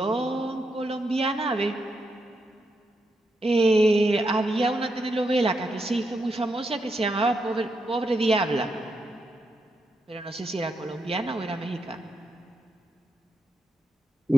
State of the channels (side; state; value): both; normal; correlation 0.82